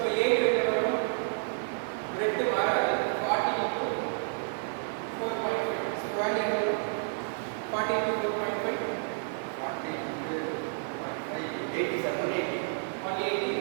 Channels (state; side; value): silent; left; 58 dB below the other